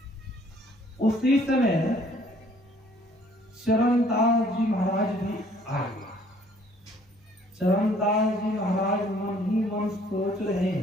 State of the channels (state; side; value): normal; both; correlation 0.60